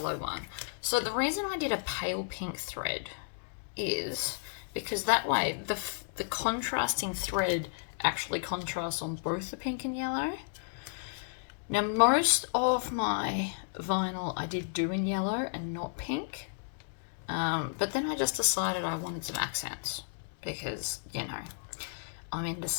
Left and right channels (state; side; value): silent; right; digital silence